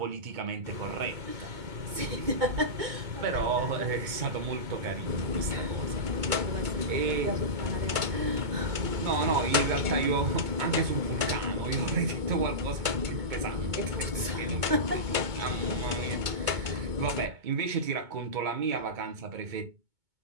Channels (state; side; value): late; left; 2.2 ms